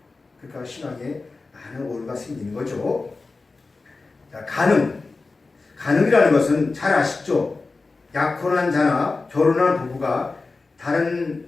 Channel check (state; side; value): quieter; right; 3.8 dB